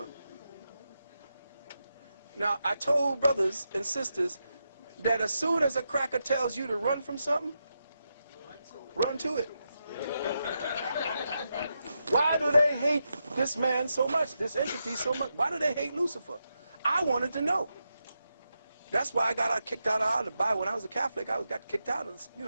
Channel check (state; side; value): inverted; both; correlation -0.86